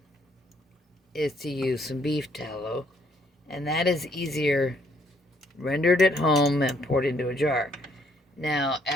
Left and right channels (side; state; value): both; normal; correlation 0.68